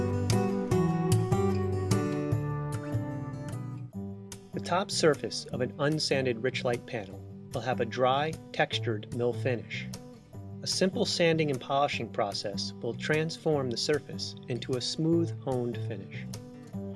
top surface of an unsanded Richlite panel will have a dry, textured mill finish. A simple sanding and polishing process will transform the surface into a smooth, honed finish.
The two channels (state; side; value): identical; both; correlation 1.00